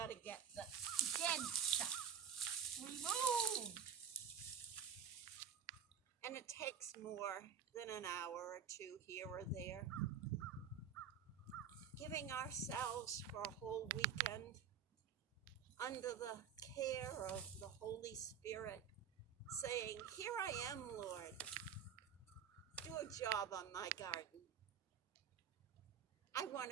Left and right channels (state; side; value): quieter; left; 7.7 dB